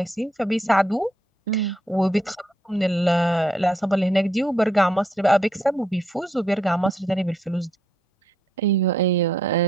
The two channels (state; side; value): normal; both; correlation 0.74